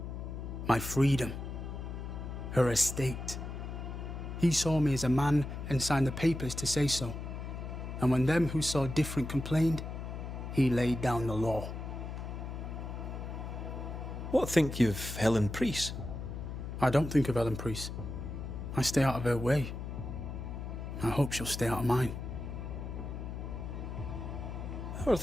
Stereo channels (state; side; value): noise; left; hum, 6 dB below the sound